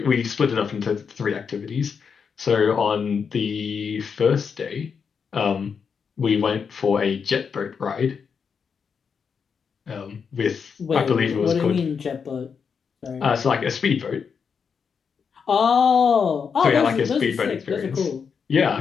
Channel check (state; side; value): quieter; right; 6.2 dB